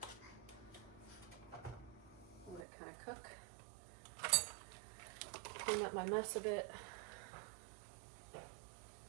Let it kind of cook. Clean up my mess a bit.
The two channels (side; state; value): left; drops out; at 2.7 s